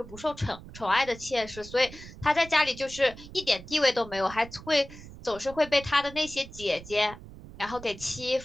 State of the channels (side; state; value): right; noise; rumble, 16 dB below the sound